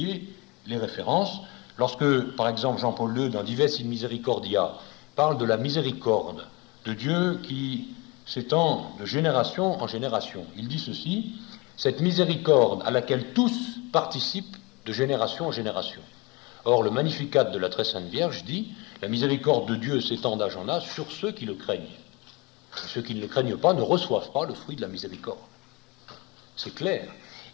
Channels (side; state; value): right; quieter; 25.6 dB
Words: les références. Lorsque, par exemple, Jean-Paul II, dans Dives in Misericordia, parle de la miséricorde de Dieu qui s'étend de génération en génération, il dit ceci: cette miséricorde à laquelle tous participent de génération en génération. Or, le Magnificat de la Très Sainte Vierge dit: la miséricorde de Dieu s'étend d'âge en âge sur ceux qui le craignent. Et ceux qui ne le craignent pas ne reçoivent pas le fruit de la miséricorde. C'est clair.